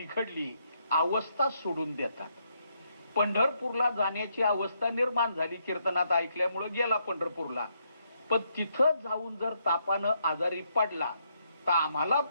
अवस्था सोडून देतात. पंढरपूरला जाण्याची अवस्था निर्माण झाली, कीर्तनात ऐकल्यामुळे गेला पंढरपूरला, पण तिथं जाऊन जर तापानं आजारी पडला तर आम्हाला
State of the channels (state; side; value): inverted; both; correlation -0.76